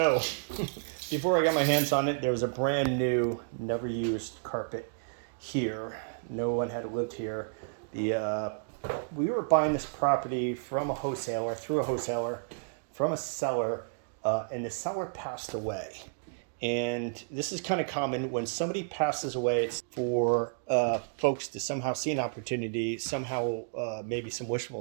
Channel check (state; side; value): silent; left; digital silence